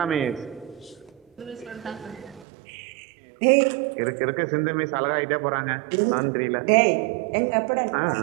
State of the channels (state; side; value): drops out; left; at 2.5 s